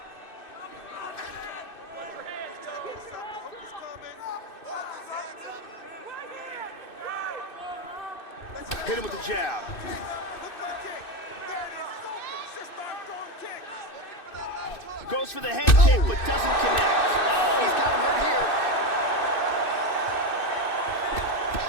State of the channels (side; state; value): right; late; 2.6 ms